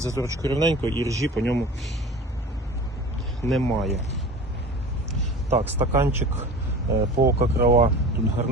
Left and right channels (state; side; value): normal; both; correlation 0.38